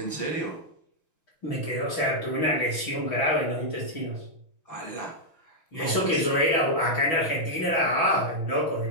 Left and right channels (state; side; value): late; right; 6.2 ms